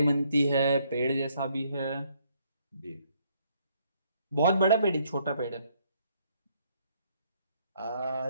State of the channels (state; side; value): inverted; both; correlation -0.69